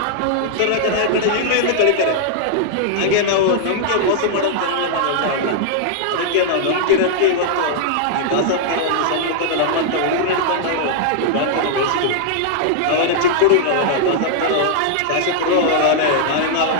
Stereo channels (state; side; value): different; both; correlation -0.01